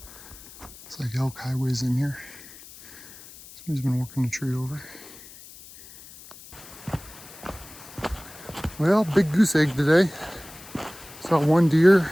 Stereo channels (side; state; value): left; noise; hiss, 18 dB below the sound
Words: It's like elk highways in here. Somebody's been working a tree over. Well, big goose egg today. Saw one deer